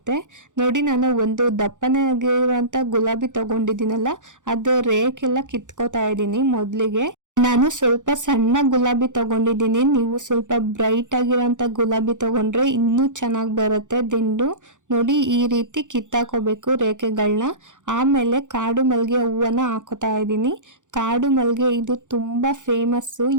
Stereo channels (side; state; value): left; late; 0.86 ms